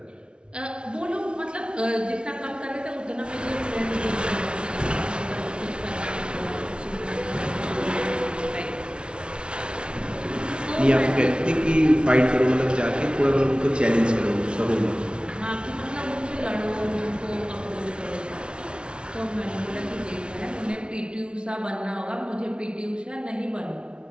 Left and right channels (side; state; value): left; late; 0.057 ms